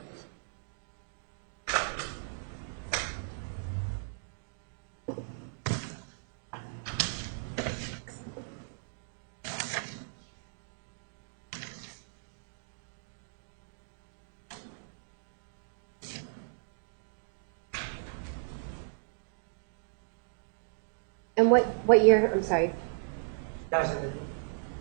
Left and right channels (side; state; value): left; silent; digital silence